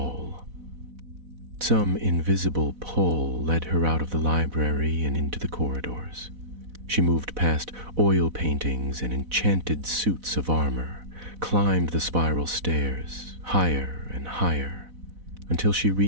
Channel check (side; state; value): left; late; 4.0 ms